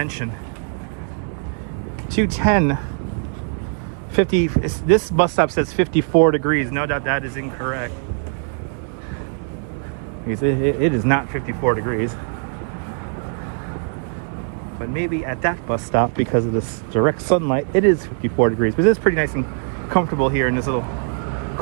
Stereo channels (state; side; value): silent; left; 59 dB below the other